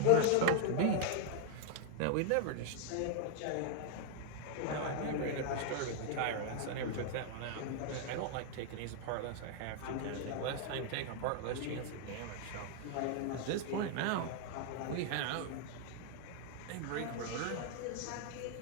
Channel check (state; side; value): different; both; correlation 0.00